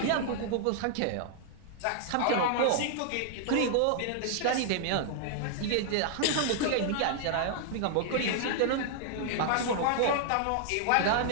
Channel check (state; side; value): different; both; correlation -0.01